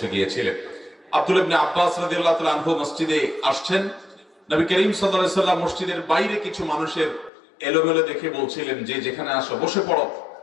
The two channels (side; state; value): right; drops out; at 7.3 s